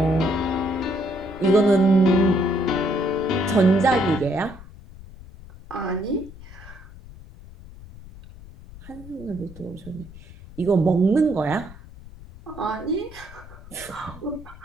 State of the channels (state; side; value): noise; left; rumble, 18 dB below the sound